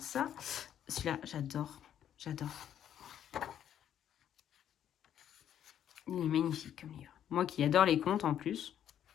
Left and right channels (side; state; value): right; quieter; 10.1 dB